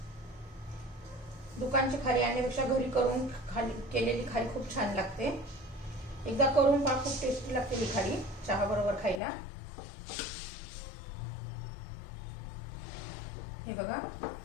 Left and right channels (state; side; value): drops out; right; at 9.2 s